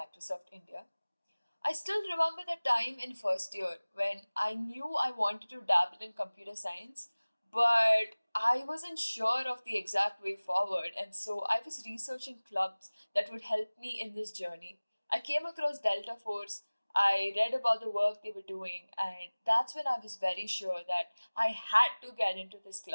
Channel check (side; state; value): both; inverted; correlation -1.00